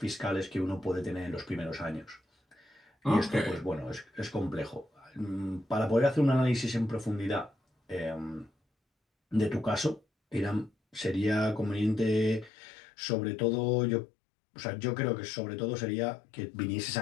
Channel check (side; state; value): right; drops out; at 12.5 s